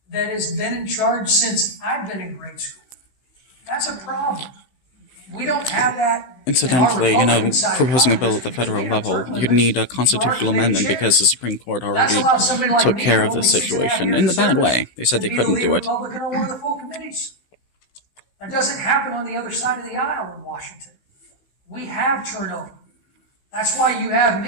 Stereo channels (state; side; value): late; right; 16 ms